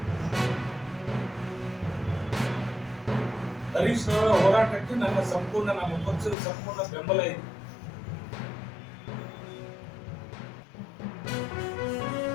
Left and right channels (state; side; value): drops out; right; at 6.4 s